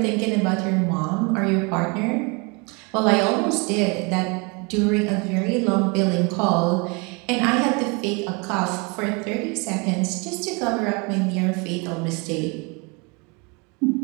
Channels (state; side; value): quieter; left; 30.4 dB